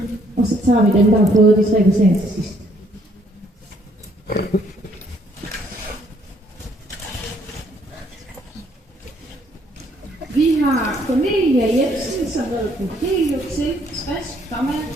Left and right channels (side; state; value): both; normal; correlation 0.66